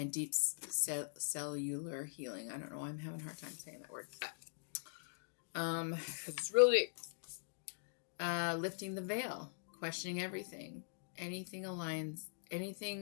deep cellular healing. I don't know why I'm having a hard time saying that word, but because it's really lifting the veil, questioning everything. Anything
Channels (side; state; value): right; silent; digital silence